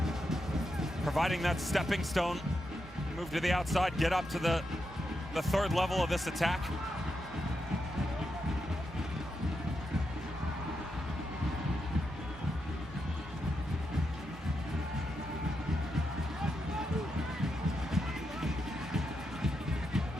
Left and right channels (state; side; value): normal; both; correlation 0.85